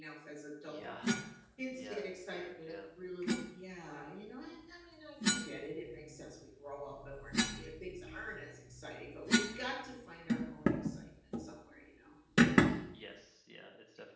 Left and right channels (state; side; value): identical; both; correlation 1.00